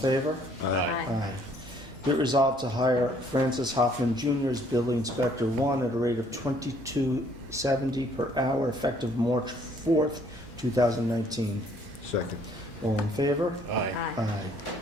Aye. Be it resolved to hire Francis Hoffman Jr. as Building Inspector 1 at a rate of $22.70 per hour effective March 4th, 2019. Second. All in favor? Aye. Aye.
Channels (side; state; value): both; normal; correlation 0.62